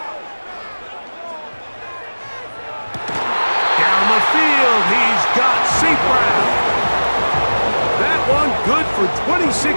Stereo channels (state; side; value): inverted; both; correlation -1.00